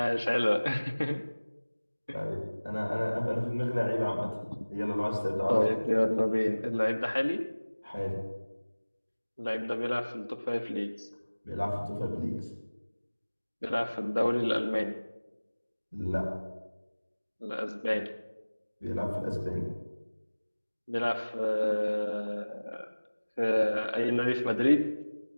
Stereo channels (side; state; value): both; inverted; correlation -1.00